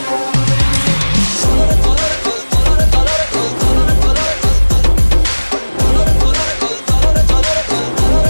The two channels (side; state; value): both; inverted; correlation -1.00